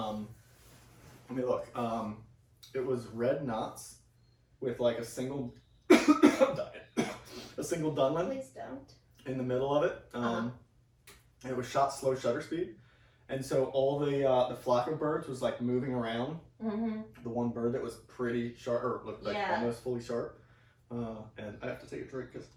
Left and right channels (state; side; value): identical; both; correlation 1.00